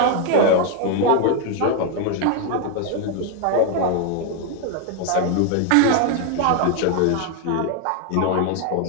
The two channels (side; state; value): both; different; correlation 0.01